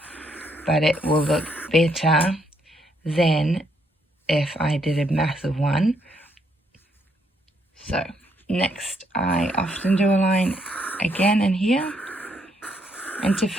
but it will look better than if I did a massive one. So next, I often do a line again in here. And to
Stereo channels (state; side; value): normal; both; correlation 0.73